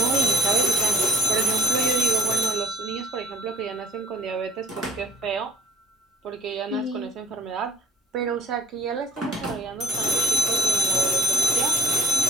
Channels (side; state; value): both; normal; correlation 0.53